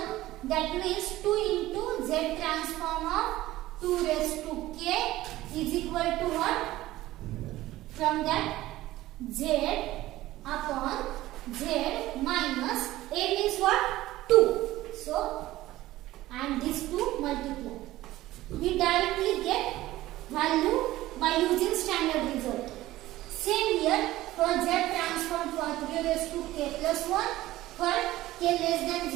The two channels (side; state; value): left; quieter; 16.3 dB